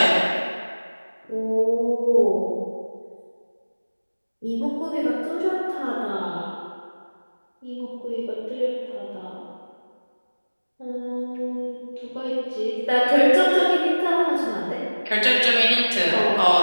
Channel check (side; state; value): both; inverted; correlation -1.00